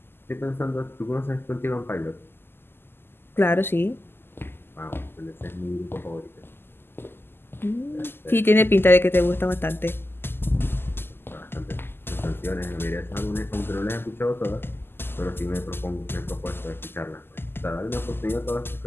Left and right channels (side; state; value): right; late; 0.11 ms